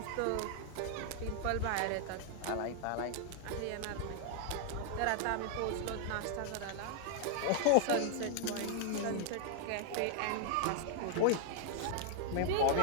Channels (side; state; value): both; different; correlation 0.00